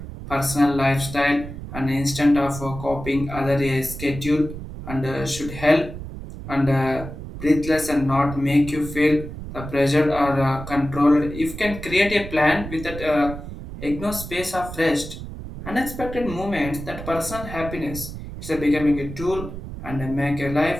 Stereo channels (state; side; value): noise; right; rumble, 10 dB below the sound